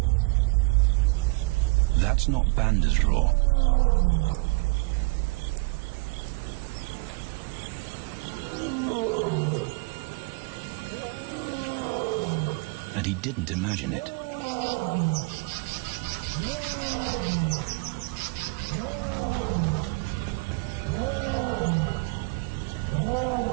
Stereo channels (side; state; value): left; quieter; 28.1 dB